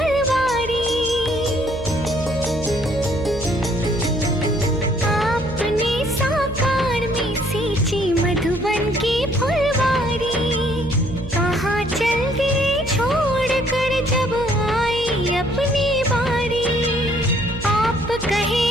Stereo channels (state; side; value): noise; right; hum, 11 dB below the sound